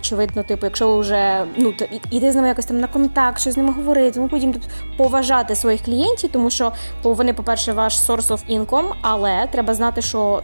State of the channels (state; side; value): inverted; both; correlation -1.00